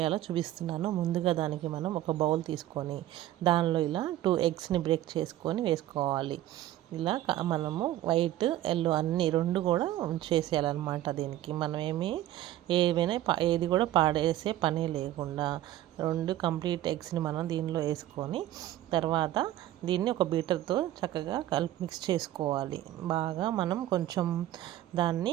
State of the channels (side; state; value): left; quieter; 13.7 dB